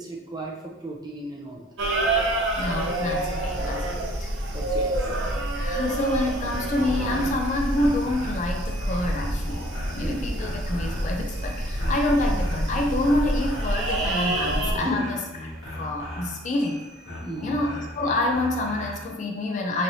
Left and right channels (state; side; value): normal; both; correlation 0.56